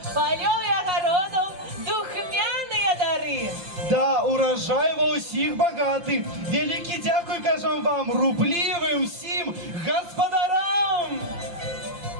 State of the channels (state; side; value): late; left; 5.8 ms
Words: полёў і агародаў, духмяныя дары. Да, урожай ва ўсіх багаты. Вялікі дзякуй, кажам вам, рублівым всім гаспадарам.